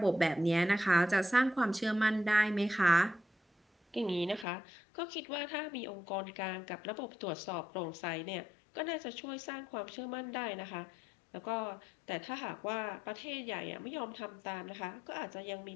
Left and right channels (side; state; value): right; drops out; at 4.5 s